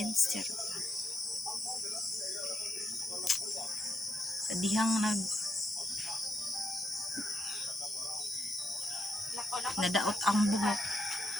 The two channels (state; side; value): normal; both; correlation 0.80